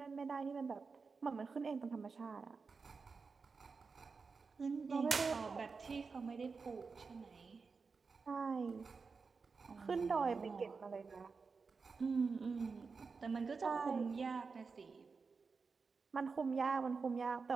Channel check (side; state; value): left; quieter; 4.8 dB